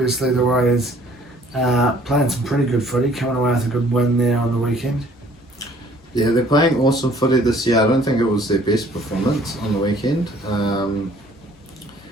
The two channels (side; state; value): both; normal; correlation 0.57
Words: the Warriors playing some pretty good footy, coming away with a good win there on the weekend. Yeah, they're playing awesome footy this year. I don't think it was their best performance on the weekend.